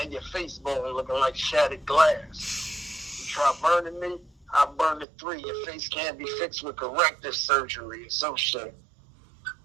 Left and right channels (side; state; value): left; drops out; at 5.1 s